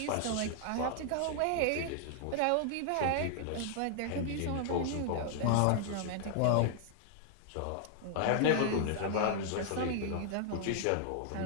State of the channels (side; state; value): both; different; correlation 0.00